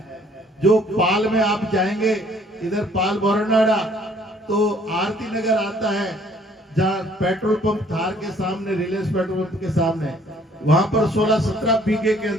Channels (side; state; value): both; normal; correlation 0.60